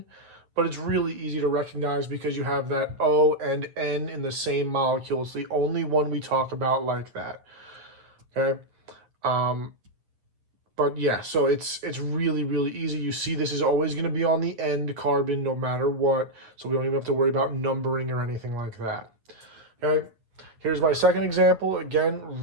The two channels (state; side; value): late; left; 9.2 ms